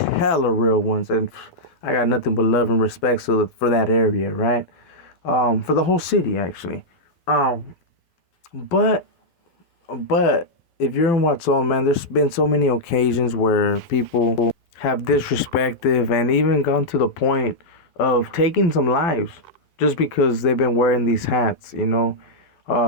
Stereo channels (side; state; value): right; late; 12 ms